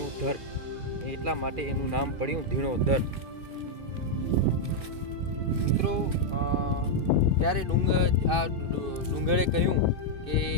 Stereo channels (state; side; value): late; left; 2.6 ms